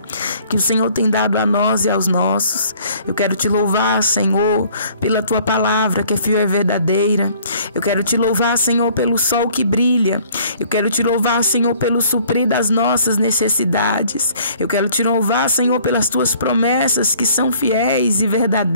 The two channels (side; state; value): both; inverted; correlation -0.56